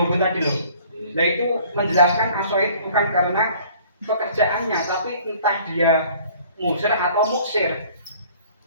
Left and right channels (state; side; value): inverted; both; correlation -0.53